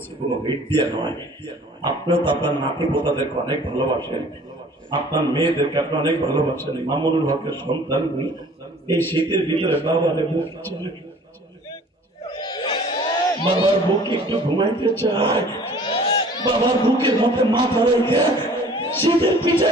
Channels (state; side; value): normal; both; correlation 0.50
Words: কোনো হিট দিয়ে নয়। আপনিও তো আপনার নাতি পোতাদেরকে অনেক ভালোবাসেন, আপনার মেয়েদেরকে আপনি অনেক ভালোবাসেন। মামুনুল হকের সন্তান এই শীতের ভিতরে বাবারে বুক চলে, বাবার বুকে একটু ঘুমাইতে চায়, বাবার বুকের মধ্যে মাথা রেখে শীতের পিঠা